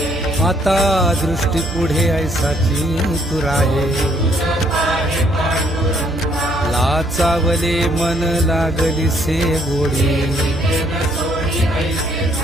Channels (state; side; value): noise; right; hum, 9 dB below the sound